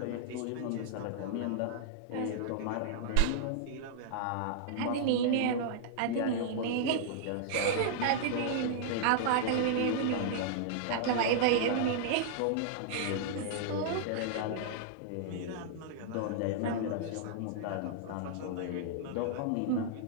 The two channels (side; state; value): both; different; correlation -0.01